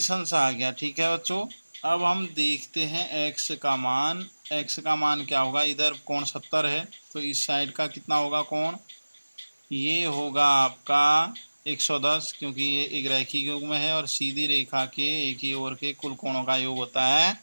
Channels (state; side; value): inverted; both; correlation -1.00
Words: अंश आ गया। ठीक है बच्चों, अब हम देखते हैं x का मान। x का मान क्या होगा, इधर कोण 70 है, तो इस साइड का कितना होगा कोण, ये होगा आपका 110, क्योंकि ये एक रैखिक योग में है और सीधी रेखा के एक ही ओर के कुल कोणों का योग होता है